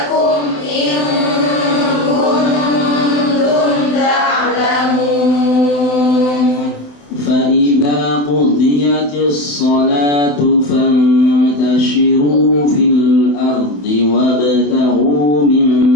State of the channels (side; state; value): right; late; 27 ms